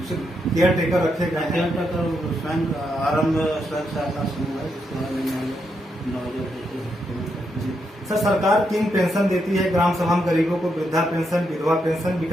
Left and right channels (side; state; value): both; normal; correlation 0.81